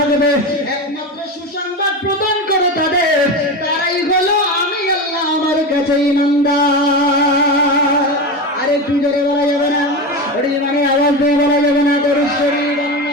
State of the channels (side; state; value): both; normal; correlation 0.21